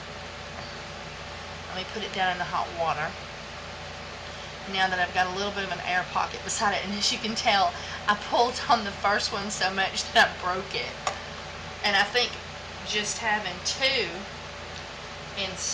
Let me put it down in the hot water. Now that I've got a little bit of an air pocket beside it, and as you can tell, I pulled on the first one so much that I broke it. And I think just having two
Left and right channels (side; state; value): both; identical; correlation 1.00